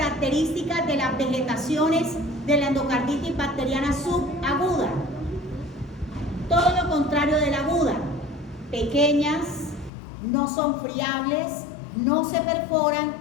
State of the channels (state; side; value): drops out; right; at 9.9 s